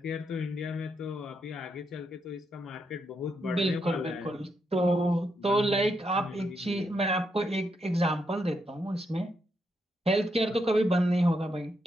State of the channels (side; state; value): both; normal; correlation 0.80